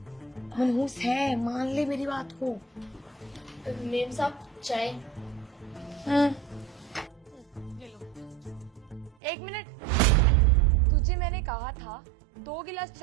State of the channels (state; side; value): drops out; left; at 9.2 s